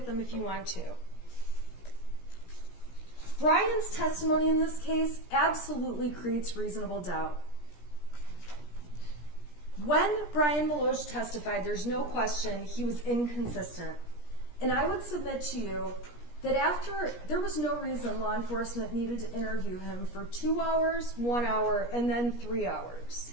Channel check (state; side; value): late; right; 17 ms